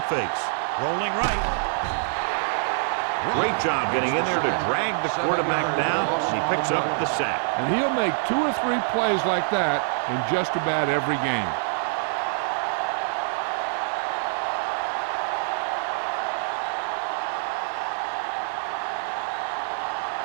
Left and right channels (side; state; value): left; silent; digital silence